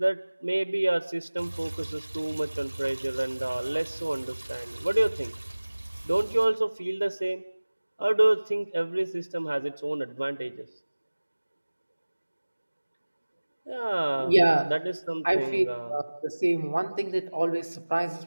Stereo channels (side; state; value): both; inverted; correlation -1.00